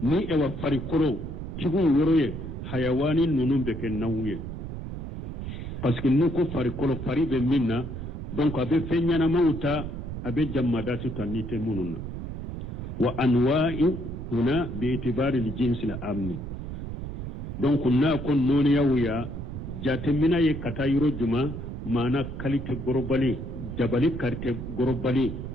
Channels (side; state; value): right; noise; rumble, 7 dB below the sound